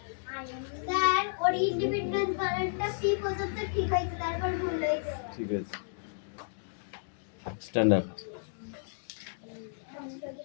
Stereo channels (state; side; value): silent; right; digital silence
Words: স্যার, ওর ইন্ডিপেন্ডেন্স বানানটা পি পর্যন্ত ঠিক হয়েছে, তারপর ভুল হয়েছে। ঠিক আছে, স্ট্যান্ড আপ।